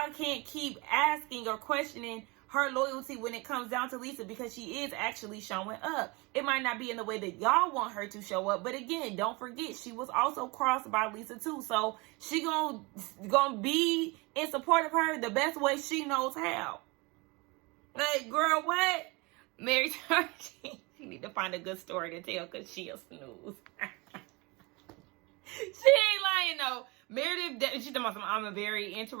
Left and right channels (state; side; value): quieter; left; 26.5 dB